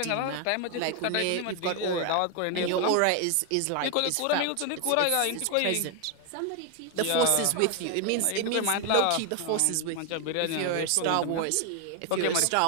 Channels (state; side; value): different; both; correlation 0.01